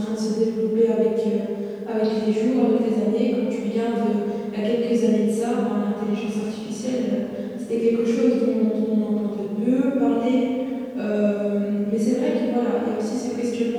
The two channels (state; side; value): identical; both; correlation 1.00